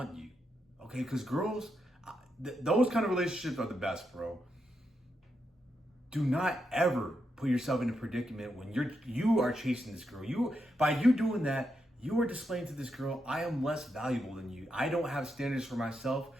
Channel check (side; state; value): both; normal; correlation 0.83